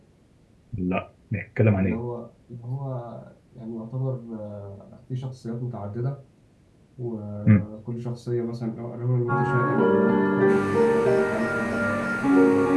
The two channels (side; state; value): both; identical; correlation 1.00